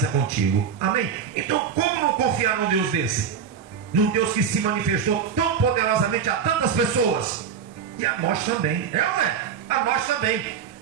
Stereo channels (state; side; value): quieter; left; 7.2 dB